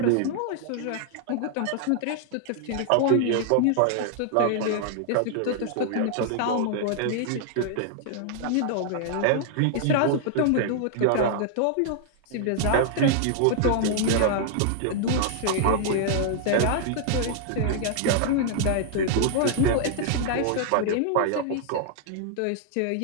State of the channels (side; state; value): both; different; correlation 0.00